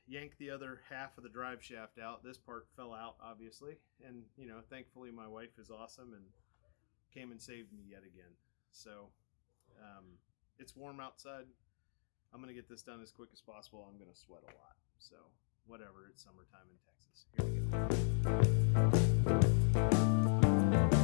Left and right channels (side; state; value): right; silent; digital silence